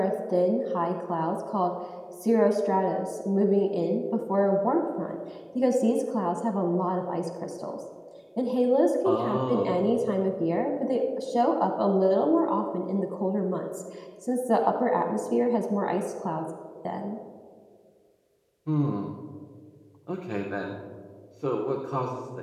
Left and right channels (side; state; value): both; identical; correlation 1.00